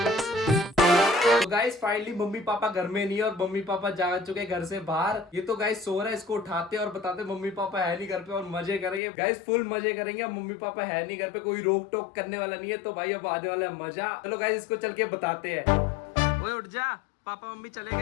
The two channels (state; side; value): drops out; right; at 9.0 s